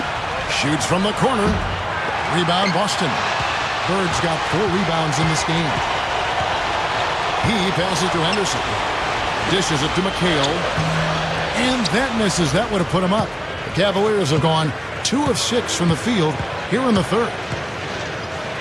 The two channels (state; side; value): identical; both; correlation 1.00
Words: Shoots from the corner. Rebound Boston. Bird's got 4 rebounds in this game. He passes to Henderson. Dishes it to McHale. And that misses. That would have put him up. The Cavaliers have gone 2 of 6 from the field here in the third.